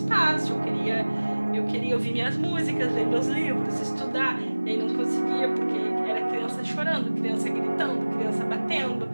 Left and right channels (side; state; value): both; inverted; correlation -1.00